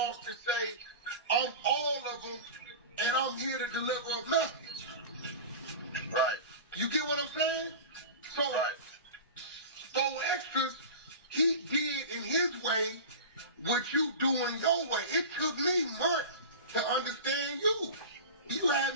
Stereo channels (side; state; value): both; inverted; correlation -0.32